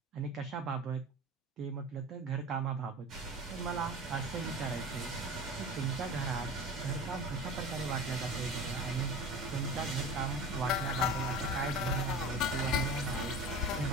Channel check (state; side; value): normal; both; correlation 0.33